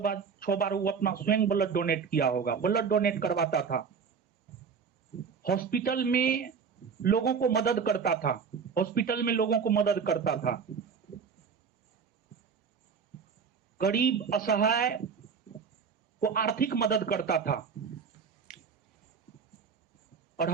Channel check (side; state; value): left; quieter; 6.1 dB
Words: बार वो अपना स्वयं ब्लड डोनेट किया होगा, ब्लड डोनेट करवाता था। हॉस्पिटल में लोगों को मदद करता था, हॉस्पिटल में लोगों को मदद करता था। गरीब असहाय को आर्थिक मदद करता था। और